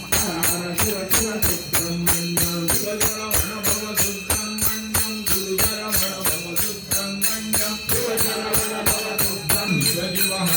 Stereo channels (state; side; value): identical; both; correlation 1.00